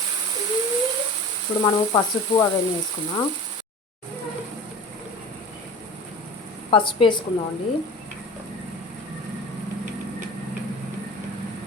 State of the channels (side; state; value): both; normal; correlation 0.36